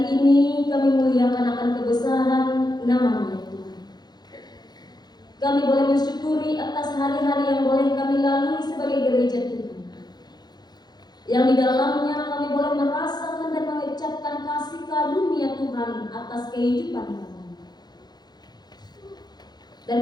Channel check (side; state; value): right; late; 0.20 ms